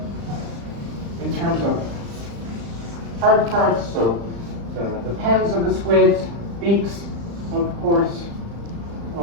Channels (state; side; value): late; left; 35 ms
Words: In terms of hard parts, so the pens of the squids, beaks, of course,